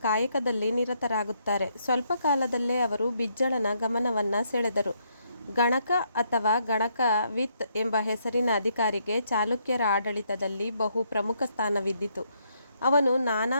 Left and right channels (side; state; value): both; inverted; correlation -0.74